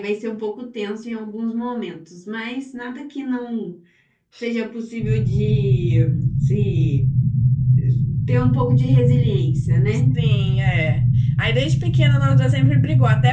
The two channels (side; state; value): both; identical; correlation 1.00